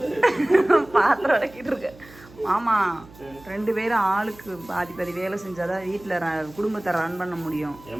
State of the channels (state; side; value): noise; right; hum, 22 dB below the sound